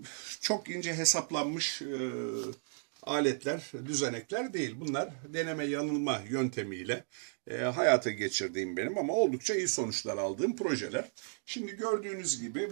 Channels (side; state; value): left; silent; digital silence